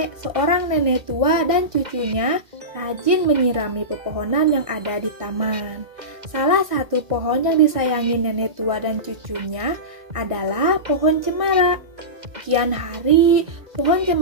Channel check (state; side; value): late; left; 1.7 ms